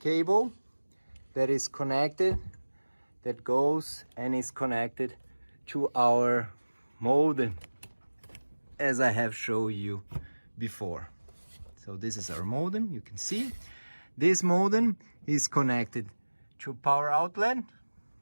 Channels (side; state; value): both; inverted; correlation -1.00